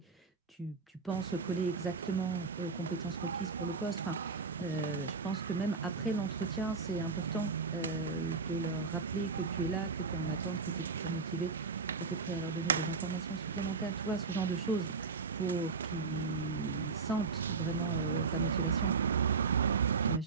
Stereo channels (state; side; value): quieter; left; 4.7 dB